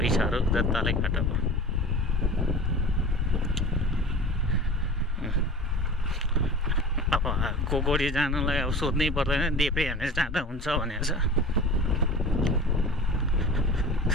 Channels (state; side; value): normal; both; correlation 0.37